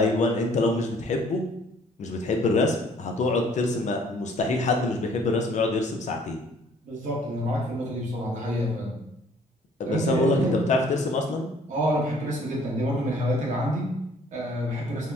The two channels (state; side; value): normal; both; correlation 0.58